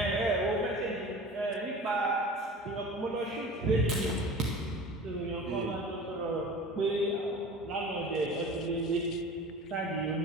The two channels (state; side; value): normal; both; correlation 0.38